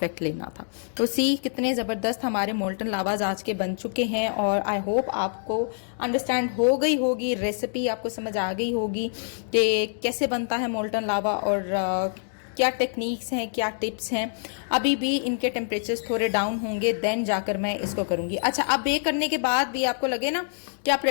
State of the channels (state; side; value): silent; right; digital silence